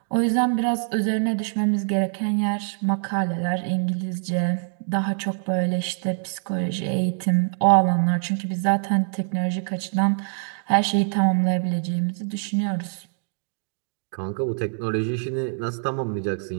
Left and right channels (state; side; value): silent; left; 62 dB below the other